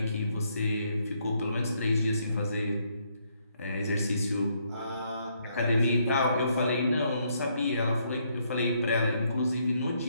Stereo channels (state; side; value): inverted; both; correlation -0.73